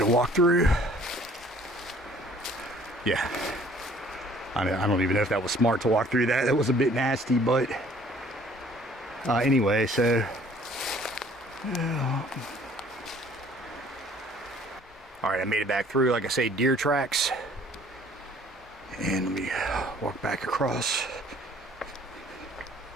walk through. Yeah, I don't even know if that was smart to walk through that. That was a bit nasty, but anyway, so all right, I made it back through, like I say, deer tracks. And let me walk back across.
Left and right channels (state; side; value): normal; both; correlation 0.56